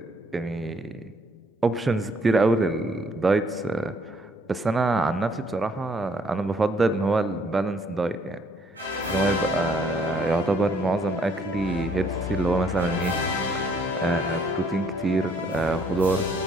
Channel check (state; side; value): normal; both; correlation 0.65